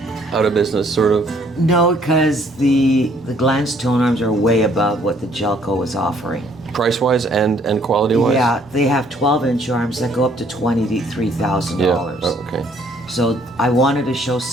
out of business, sort of? No, because the Glanz tone arms are way above what the Gelco was offering. Price-wise and quality-wise? Yeah, they have 12-inch arms that go up to $23,000. Yeah, oh, okay. So I wanted to show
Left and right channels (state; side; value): normal; both; correlation 0.62